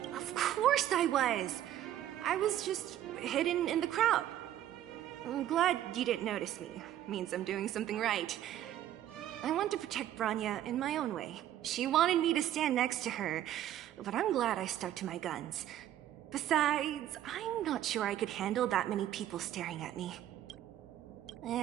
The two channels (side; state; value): left; quieter; 12.0 dB